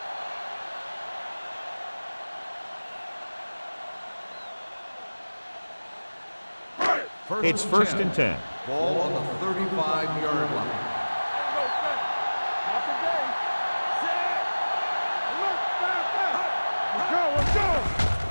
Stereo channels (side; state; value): both; inverted; correlation -1.00